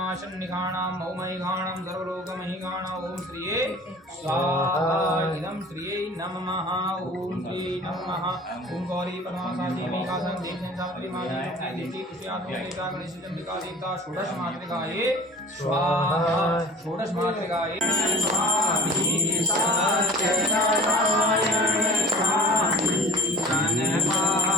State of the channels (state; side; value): normal; both; correlation 0.44